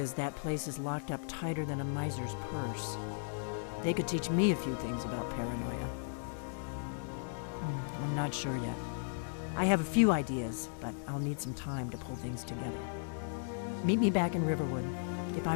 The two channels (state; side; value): silent; right; digital silence